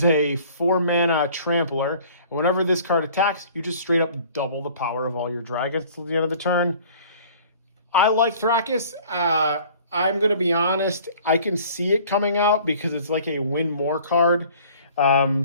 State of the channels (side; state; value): both; inverted; correlation -0.51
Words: a 4-mana trampler. And whenever this card attacks, you just straight up double the power of all your dragons till the end of the turn. I like Thracus. I'm going to be honest. I can see it coming out because it's like a win more card.